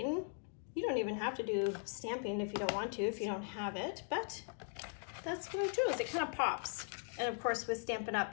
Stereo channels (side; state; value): right; silent; 51 dB below the other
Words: You don't even have to do stamping if you don't want to, if you don't have it, but that's what I chose. It kind of pops. And of course with Stampin'